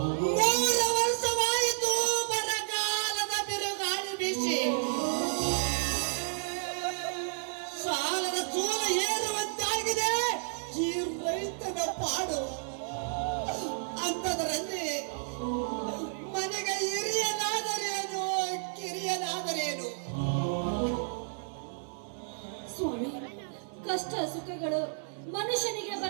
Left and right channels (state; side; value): silent; left; digital silence